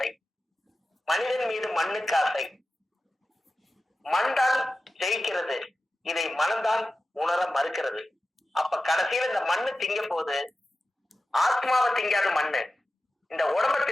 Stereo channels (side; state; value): both; normal; correlation 0.94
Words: மனிதன் மீது மண்ணுக்கு ஆசை, மண் தான் ஜெயிக்கிறது, இதை மனம்தான் உணர மறுக்கிறது. அப்ப கடைசியில இந்த மண்ணு திங்க போது ஆத்மாவை திங்காத மண்ணு இந்த உடம்ப